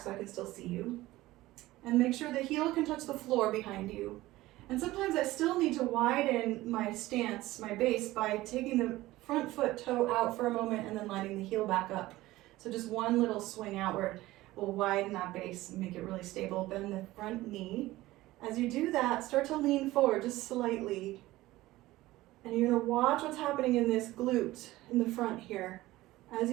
I can still see you. And make sure the heel can touch the floor behind you. And sometimes I still need to widen my stance, my base, by taking the front foot toe out for a moment and then lining the heel back up. So just one little swing outward will widen that base and make it really stable. Bend the front knee. As you do that, start to lean forward just slightly. And you're gonna watch what's happening in this glute in the front here. As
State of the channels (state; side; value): quieter; left; 17.5 dB